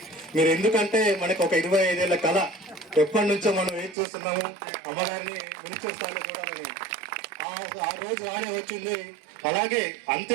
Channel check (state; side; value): drops out; left; at 4.0 s